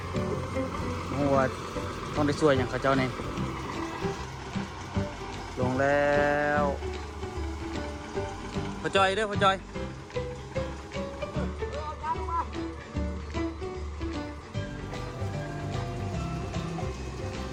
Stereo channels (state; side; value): identical; both; correlation 1.00